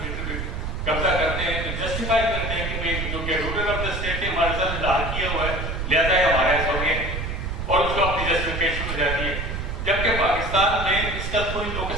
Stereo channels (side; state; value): right; noise; rumble, 4 dB below the sound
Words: قبضہ کرتے ہیں تو جسٹیفائی کرتے ہیں کہ بھائی جو کہ رولر آف دا اسٹیٹ نے ہمارے ساتھ اظہار کیا ہوا ہے لہٰذا یہ ہمارا ایسا ہو گیا اور اس کو اپنی جسٹیفیکیشن ہو جاتی ہے. جبکہ پاکستان میں اس کا کوئی لوکس